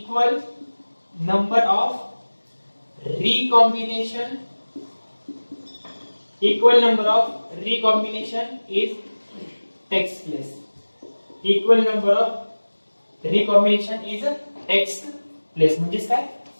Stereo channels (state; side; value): inverted; both; correlation -1.00